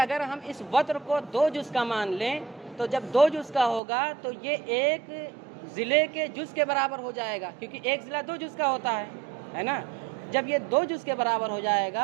ہم اس وتر کو 2 جز کا مان لیں تو جب 2 جز کا ہوگا تو یہ ایک ضلع کے جز کے برابر ہو جائے گا، کیونکہ ایک ضلع 2 جز کا ہوتا ہے نا۔ جب یہ 2 جز کے برابر ہو جائے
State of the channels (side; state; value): left; drops out; at 3.8 s